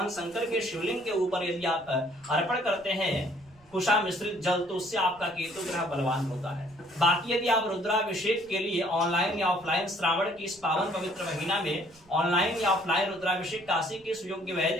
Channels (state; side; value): noise; right; rumble, 28 dB below the sound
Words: शंकर के शिवलिंग के ऊपर यदि आप अर्पण करते हैं कुशा मिश्रित जल, तो उससे आपका केतु ग्रह बलवान होता है। बाकी यदि आप रुद्राभिषेक के लिए ऑनलाइन या ऑफलाइन श्रावण की इस पावन पवित्र महीना में ऑनलाइन या ऑफलाइन रुद्राभिषेक काशी के सुयोग्य